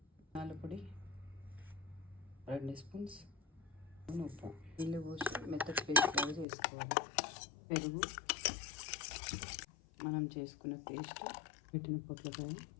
పొడి 2 స్పూన్స్, ఉప్పు, నీళ్ళు పోసి మెత్తటి పేస్ట్ లాగా చేసుకోవాలి. పెరుగు, మనం చేసుకున్న పేస్ట్, పెట్టిన పొట్లకాయ,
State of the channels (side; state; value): right; drops out; at 6.5 s